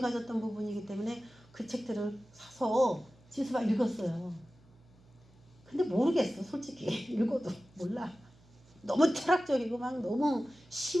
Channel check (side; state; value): right; noise; hum, 27 dB below the sound